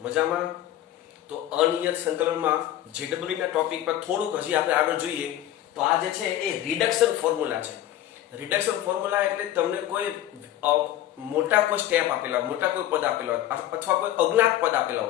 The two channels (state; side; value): quieter; right; 12.9 dB